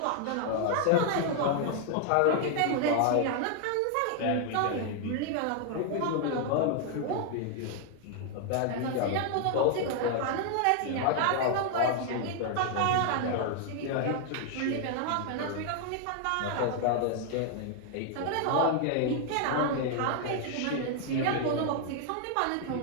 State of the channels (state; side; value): different; both; correlation 0.00